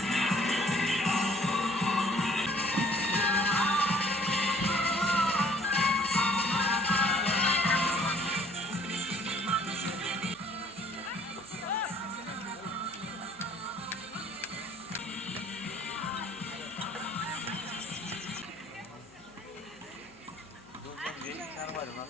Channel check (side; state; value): right; noise; hum, 29 dB below the sound